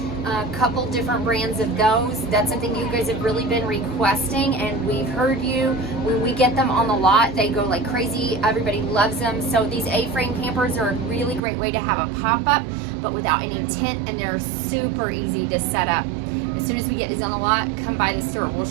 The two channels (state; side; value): drops out; left; at 11.4 s